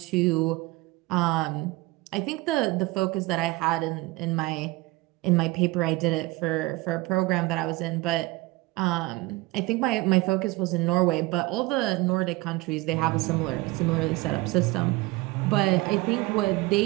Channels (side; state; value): left; quieter; 20.8 dB